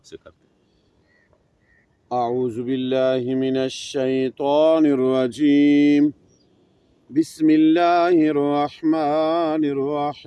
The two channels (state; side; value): identical; both; correlation 1.00